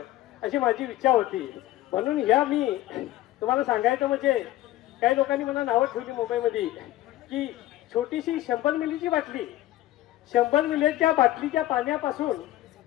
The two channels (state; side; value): quieter; right; 15.3 dB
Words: अशी माझी इच्छा होती. म्हणून या मी तुम्हाला सांगायचं म्हणजे काही लोकांनी मला नावं ठेवली मुंबईमध्ये की छोटीशी 100 मिलीची बाटली, 100 मिलीच्या बाटलीच्या पाण्यापासून